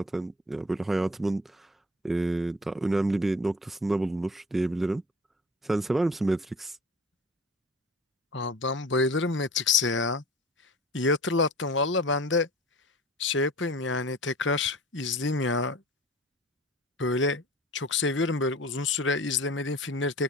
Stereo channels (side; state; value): both; normal; correlation 0.42